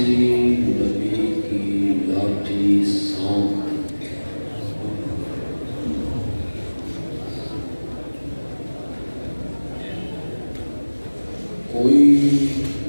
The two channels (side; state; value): both; inverted; correlation -1.00